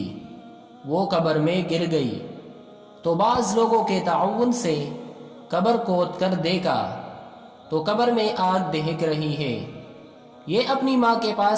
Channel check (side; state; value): both; identical; correlation 1.00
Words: وہ قبر میں گر گئی تو بعض لوگوں کے تعاون سے قبر کھود کر دیکھا تو قبر میں آگ دہک رہی ہے۔ یہ اپنی ماں کے